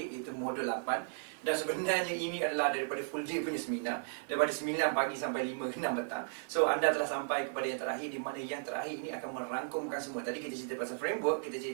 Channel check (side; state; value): left; silent; 54 dB below the other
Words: iaitu modul 8. Dan sebenarnya ini adalah daripada full day punya seminar, daripada 9 pagi sampai 5 ke 6 petang. So anda telah sampai kepada yang terakhir, di mana yang terakhir ini akan merangkumkan semua. Tadi kita cerita pasal framework, kita